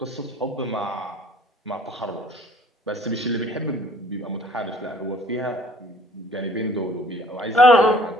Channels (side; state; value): both; normal; correlation 0.55